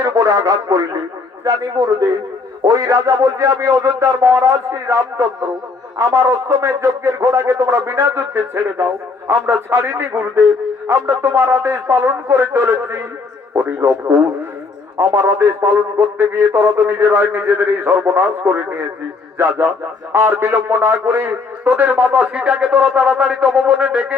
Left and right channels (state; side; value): quieter; right; 4.2 dB